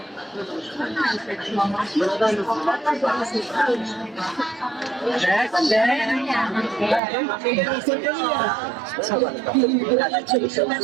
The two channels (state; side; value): drops out; left; at 7.0 s